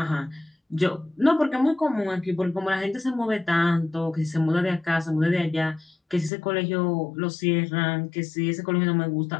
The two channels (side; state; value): right; drops out; at 6.3 s